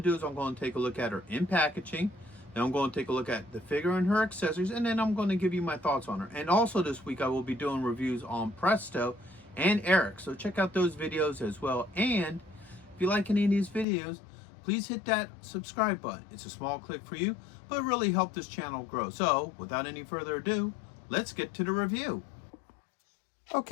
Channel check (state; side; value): drops out; right; at 13.9 s